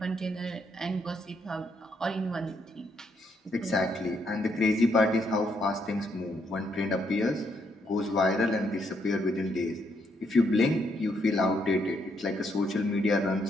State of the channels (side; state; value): both; normal; correlation 0.75